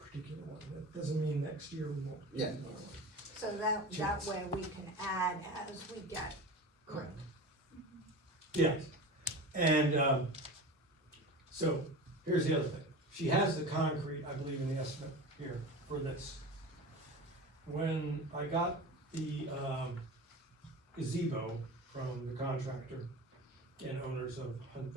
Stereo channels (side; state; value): both; normal; correlation 0.31